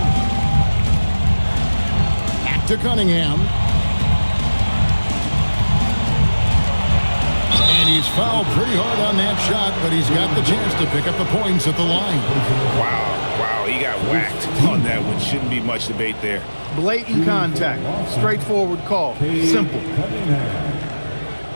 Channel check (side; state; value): both; inverted; correlation -1.00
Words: Back to Cunningham. And he's fouled pretty hard on that shot, but he's got the chance to pick up the points at the line. Wow, he got whacked on that one. Shouldn't be much debate there. Blatant contact. Straightforward call. Simple.